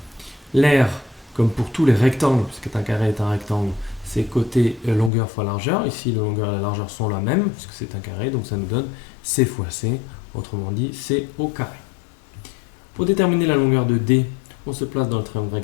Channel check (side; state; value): right; drops out; at 5.1 s